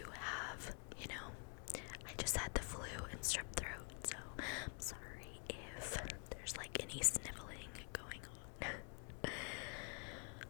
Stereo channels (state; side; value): quieter; right; 35.6 dB